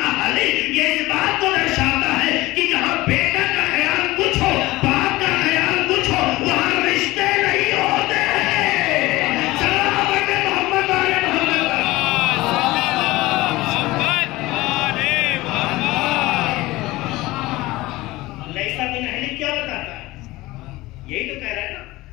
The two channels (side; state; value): right; quieter; 19.3 dB